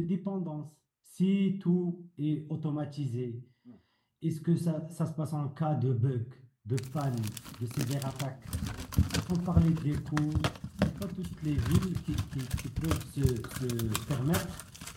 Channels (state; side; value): identical; both; correlation 1.00